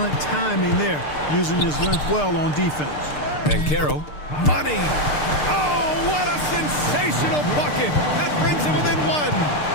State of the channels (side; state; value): right; late; 6.7 ms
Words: timing there, using his length well on defense. And Caro. Money! Oh, what a sensational bucket! That brings him within 1.